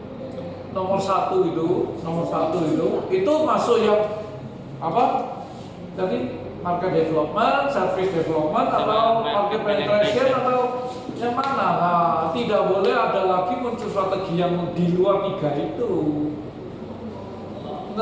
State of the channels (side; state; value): both; identical; correlation 1.00